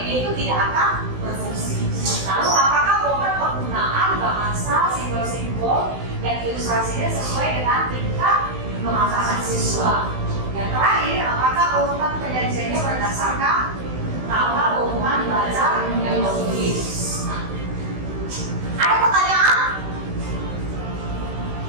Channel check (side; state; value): left; late; 16 ms